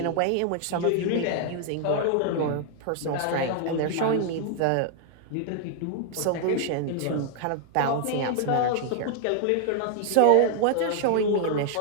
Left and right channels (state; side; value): different; both; correlation 0.00